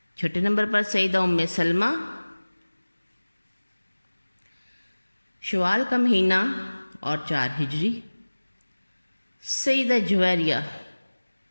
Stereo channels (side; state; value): both; inverted; correlation -1.00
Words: 6 نمبر پر سیدہ ام سلمہ شوال کا مہینہ اور 4 ہجری۔ سیدہ جویریہ